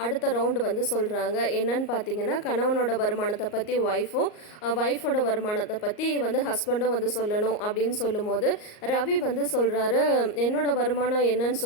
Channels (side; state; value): right; late; 38 ms